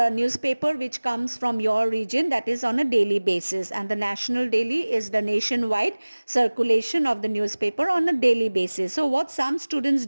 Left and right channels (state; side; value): inverted; both; correlation -1.00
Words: newspaper which comes from your region, that is on a daily basis, and the national daily is the nationwide circulation of the newspaper on a daily basis. So what some students